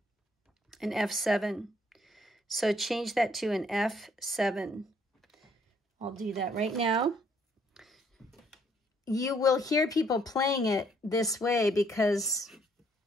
An F7. So change that to an F7. I'll do that right now. You will hear people playing it this way because,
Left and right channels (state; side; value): normal; both; correlation 0.66